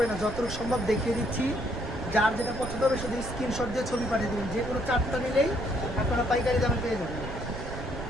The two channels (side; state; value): right; noise; rumble, 8 dB below the sound